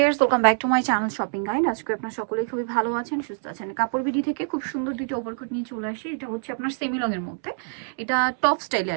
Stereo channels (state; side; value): silent; left; 62 dB below the other